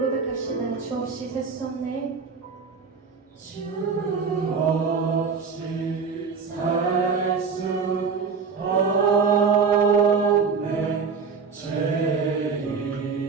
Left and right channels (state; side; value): quieter; left; 5.4 dB